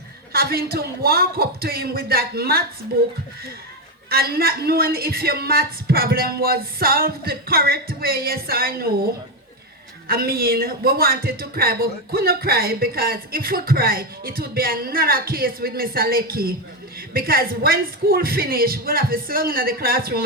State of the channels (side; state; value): both; normal; correlation 0.09